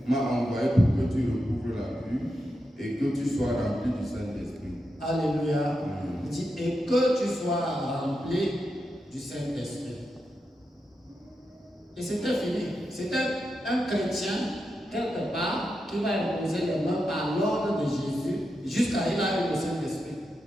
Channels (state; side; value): normal; both; correlation 0.87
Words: m'a envoyé pour que tu recouvres la vue et que tu sois rempli du Saint-Esprit. Alléluia. Il dit, et que tu sois rempli du Saint-Esprit. Et c'était fini. C'était un chrétien, quelque part, qui va imposer les mains par l'ordre de Jésus jusqu'à il a eu le Saint-Esprit.